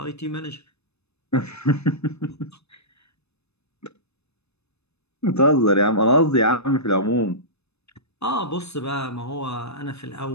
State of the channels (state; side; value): late; right; 0.80 ms